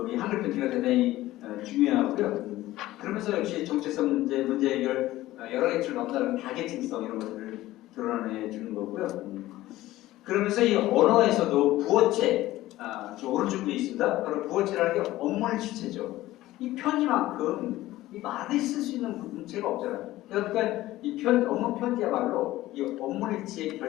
이 한글 편지가 대단히 중요하고요. 그러면서 역시 정체성 문제 해결 여러 가지를 넘나드는 다계층성 이런 것들을 드러내 주는 거고요. 그러면서 이 언어에서도 부어체, 저 오른쪽에 있습니다. 바로 부어체라는 게 업무의 주체죠. 이 편지만큼 이 말을 쓸 수 있는 문체가 없잖아요. 그러니까 이 업무 편지야말로 이 업무의 주체의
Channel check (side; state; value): right; quieter; 16.2 dB